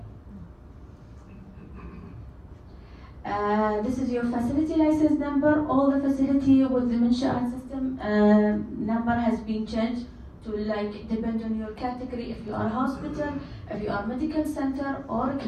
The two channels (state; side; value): identical; both; correlation 1.00